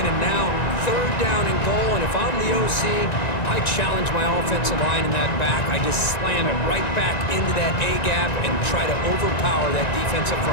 and now third down and goal. And if I'm the OC, I challenge my offensive line in that back. I just slam it right back into that A-gap and try to overpower that defensive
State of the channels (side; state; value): right; late; 1.9 ms